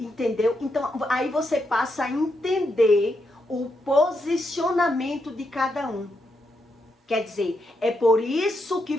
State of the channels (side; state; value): both; normal; correlation 0.82